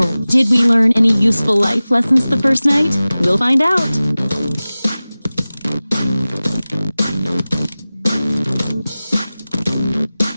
did we learn any useful life lessons the first night? We'll find out.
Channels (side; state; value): both; inverted; correlation -0.97